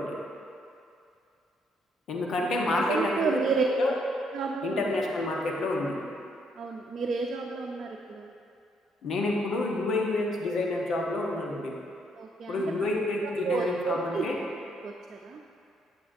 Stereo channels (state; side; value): normal; both; correlation 0.71